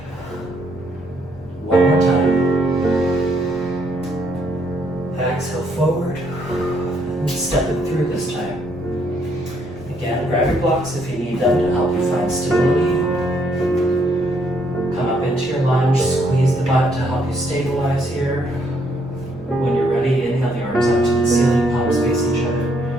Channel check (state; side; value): normal; both; correlation 0.71